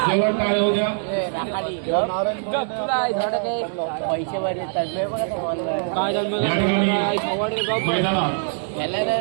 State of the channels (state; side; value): silent; left; digital silence